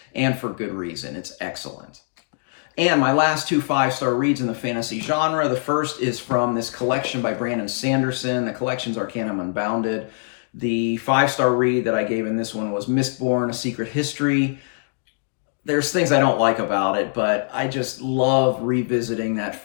and for good reason. It's excellent. And my last 2 5-star reads in the fantasy genre. The first is from this collection by Brandon Sanderson. The collection's Arcanum Unbounded. The 5-star read that I gave in this one was Mistborn, A Secret History. There's things I don't like about it, but I just love revisiting that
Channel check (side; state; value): right; silent; digital silence